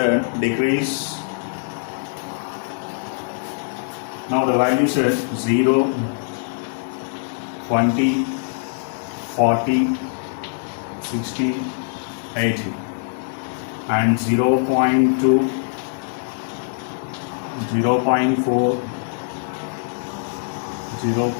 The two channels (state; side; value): silent; right; digital silence